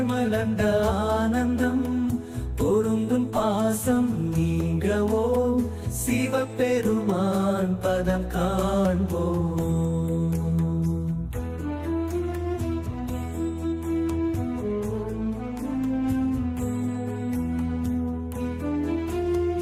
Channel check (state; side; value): identical; both; correlation 1.00